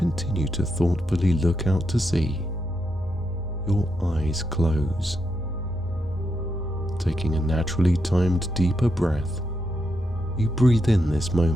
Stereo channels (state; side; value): normal; both; correlation 0.83